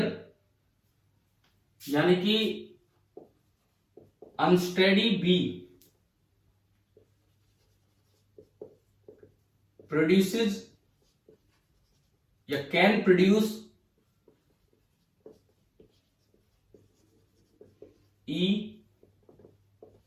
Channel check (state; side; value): identical; both; correlation 1.00